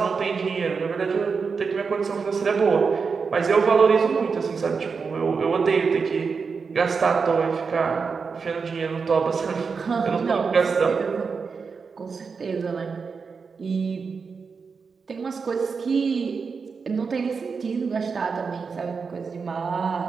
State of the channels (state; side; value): quieter; left; 5.2 dB